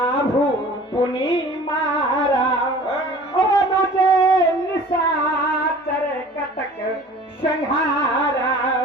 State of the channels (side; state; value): both; normal; correlation 0.45